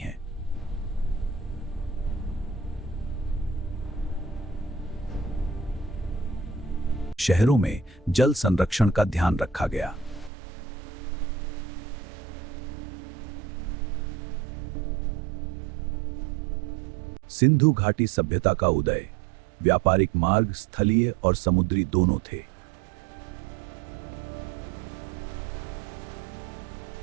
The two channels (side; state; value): left; drops out; at 10.3 s